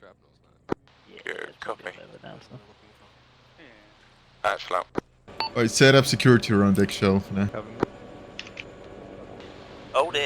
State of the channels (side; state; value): both; identical; correlation 1.00